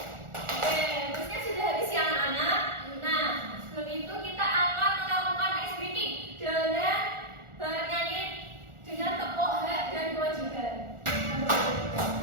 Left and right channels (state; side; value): late; left; 1.4 ms